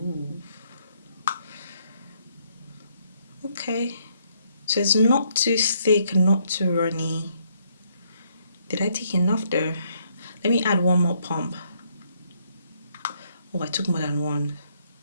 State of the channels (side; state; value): both; inverted; correlation -0.71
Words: Okay, so it's not too thick, not too runny. Did I take enough there? Let me add one more pump. Oh, I took more than one.